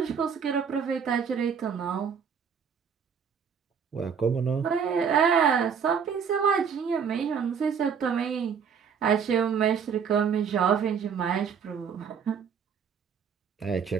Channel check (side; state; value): left; quieter; 6.9 dB